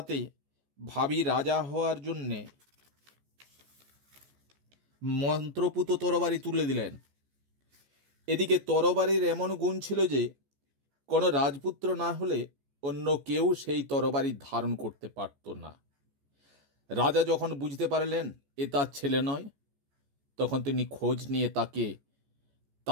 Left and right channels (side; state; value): left; late; 14 ms